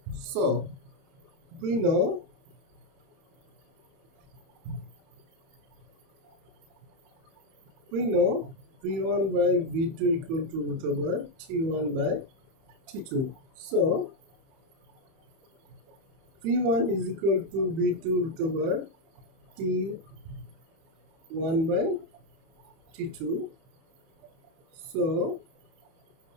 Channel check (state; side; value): late; left; 31 ms